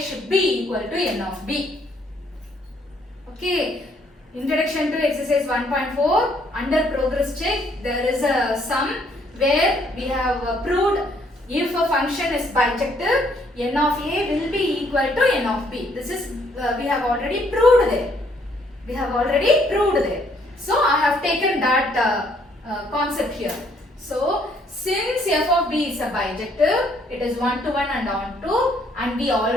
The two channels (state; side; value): normal; both; correlation 0.67